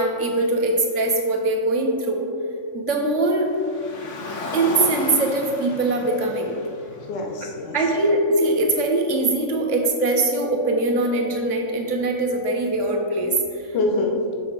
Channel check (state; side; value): late; right; 3.6 ms